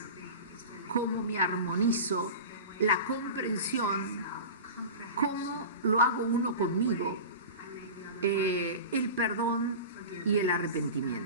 cómo me armonizo, la comprensión, cómo lo hago uno conmigo, el perdón y el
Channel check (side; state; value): both; inverted; correlation -0.31